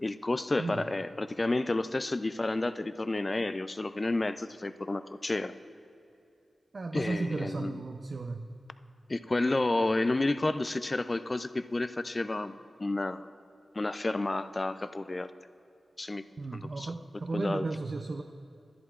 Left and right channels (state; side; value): normal; both; correlation 0.98